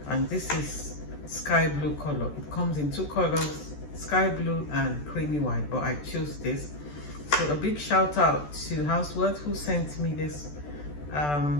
and this is sky blue color. It comes in two colors, sky blue and creamy white, but I chose this. So a big shout out to Hauswirt who sent me this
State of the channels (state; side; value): late; right; 14 ms